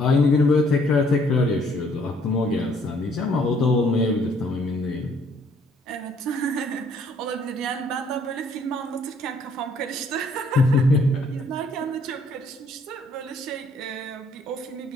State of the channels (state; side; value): normal; both; correlation 0.63